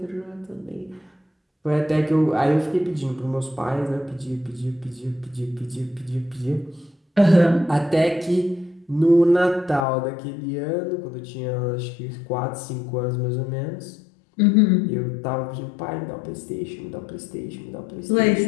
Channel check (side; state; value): right; drops out; at 9.9 s